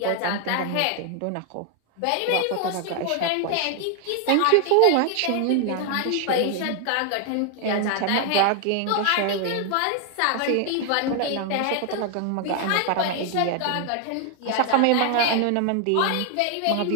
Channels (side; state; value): both; different; correlation 0.00